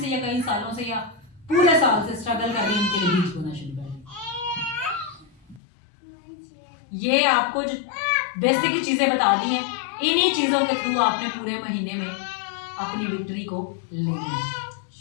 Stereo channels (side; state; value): right; drops out; at 5.6 s